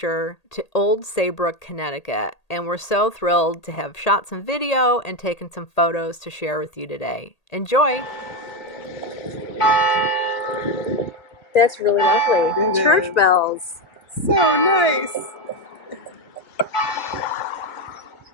to Old Saybrook, Connecticut, and we're so thrilled to have shot some video and taken some photos to share with you today. Enjoy! That's really lovely. Mm-hmm. Church bells. So nice.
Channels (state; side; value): late; right; 1.8 ms